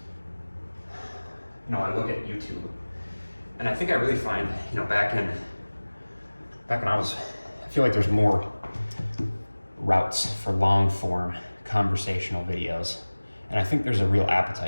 you know, I look at YouTube, and I think I really find, you know, back when I feel like there's more routes for long form conversational videos, and I think there's a real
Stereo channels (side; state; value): both; inverted; correlation -1.00